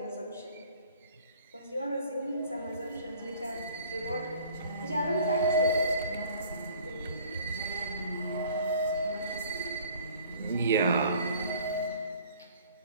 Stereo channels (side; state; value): both; inverted; correlation -0.53